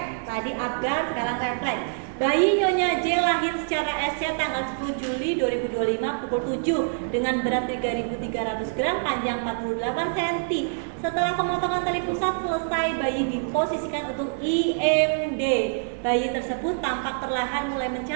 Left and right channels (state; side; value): silent; left; 61 dB below the other